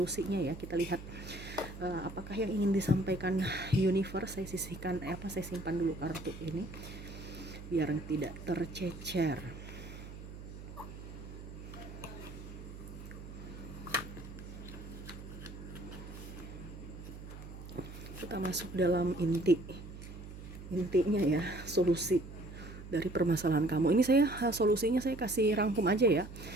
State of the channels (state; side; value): noise; right; hum, 12 dB below the sound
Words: ya. Kita lihat apakah yang ingin disampaikan universe. Saya simpan dulu kartu ini biar tidak tercecer. Kita masuk dalam intinya ya, solusi dari permasalahan kamu. Ini saya solusinya saya kasih rangkum aja ya,